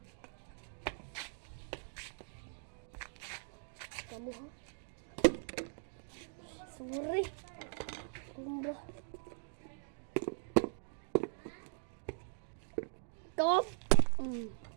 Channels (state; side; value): silent; left; digital silence